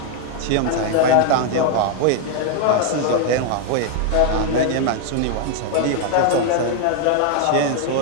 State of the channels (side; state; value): both; different; correlation 0.00